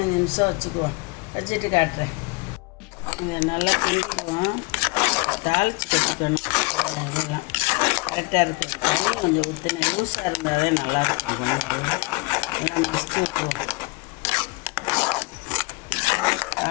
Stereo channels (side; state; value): right; quieter; 28.7 dB